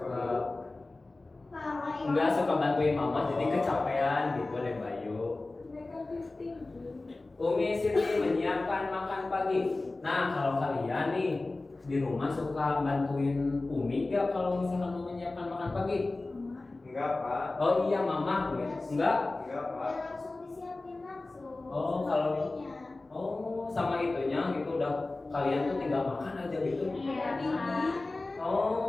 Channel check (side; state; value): right; quieter; 3.2 dB